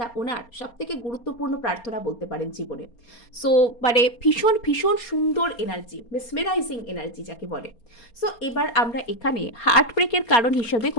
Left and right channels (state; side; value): late; right; 4.3 ms